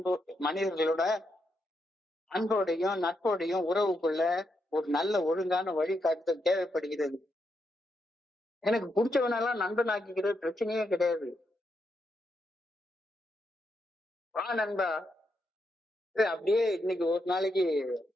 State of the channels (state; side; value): normal; both; correlation 0.82